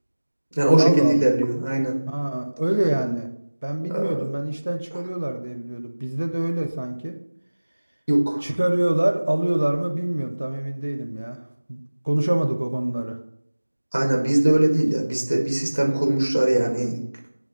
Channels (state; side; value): inverted; both; correlation -1.00